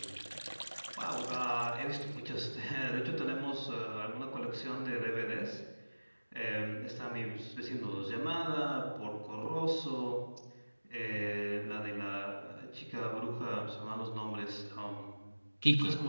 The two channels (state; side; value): inverted; both; correlation -1.00